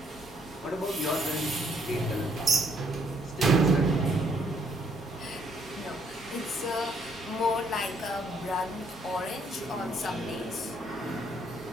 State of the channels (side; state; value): both; normal; correlation 0.68